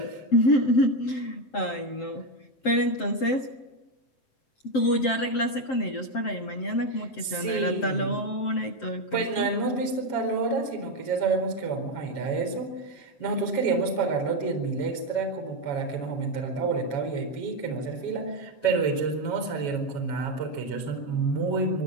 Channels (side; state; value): right; late; 7.6 ms